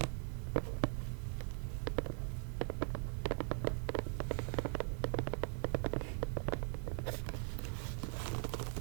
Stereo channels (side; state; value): left; silent; 50 dB below the other